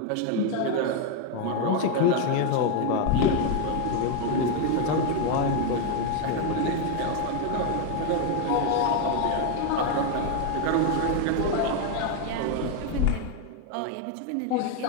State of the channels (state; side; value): different; both; correlation 0.01